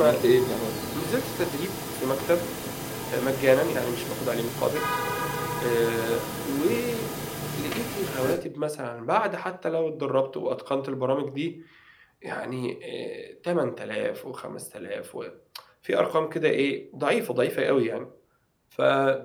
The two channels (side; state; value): both; identical; correlation 1.00